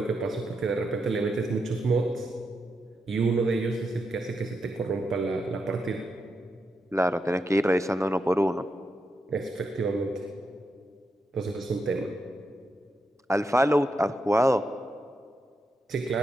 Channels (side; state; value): both; normal; correlation 0.84